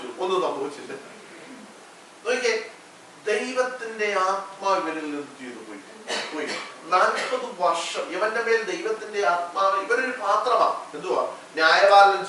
ഒന്നും സംഭവിച്ചില്ല. നോക്കിയേ, ദൈവത്തിന്റെ ആത്മാവ് ഇവരിൽ നിന്ന് ചെയ്തു പോയി. 40 വർഷം ഇവന്റെ മേൽ ദൈവത്തിന്റെ ആത്മാവ്. ഇവരൊരു പാത്രമാണ്. എന്തുവാ? ന്യായപാലനം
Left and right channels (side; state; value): both; identical; correlation 1.00